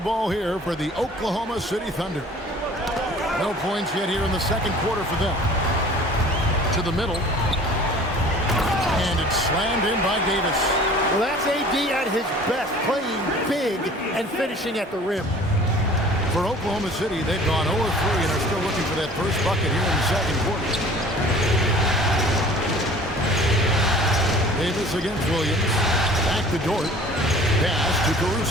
here for the Oklahoma City Thunder. No points yet here in the second quarter for them. To the middle. And it's slammed in by Davis. Well, that's AD at his best, playing big and finishing at the rim. For Oklahoma City, they've gone 0-3 and are still looking for that first bucket here in the second quarter. Davis against Williams. Back to Dort. Pass to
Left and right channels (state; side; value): normal; both; correlation 0.48